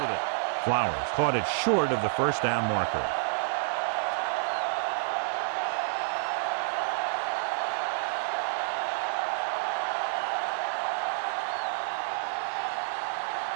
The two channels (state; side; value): silent; left; digital silence